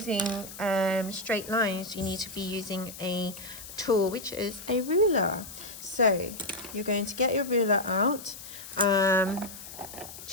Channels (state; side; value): noise; left; hiss, 13 dB below the sound